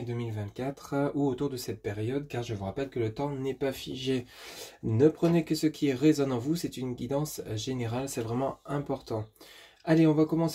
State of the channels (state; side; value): identical; both; correlation 1.00